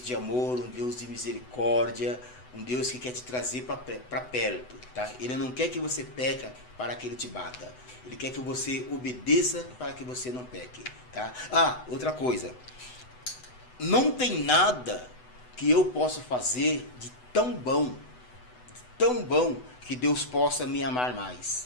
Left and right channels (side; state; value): right; late; 8.0 ms